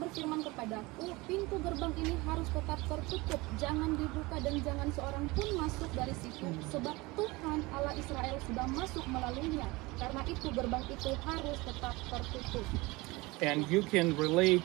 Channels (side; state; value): left; quieter; 22.8 dB